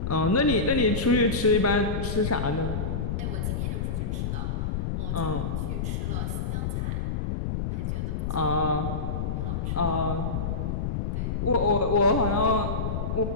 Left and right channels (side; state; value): left; noise; rumble, 1 dB below the sound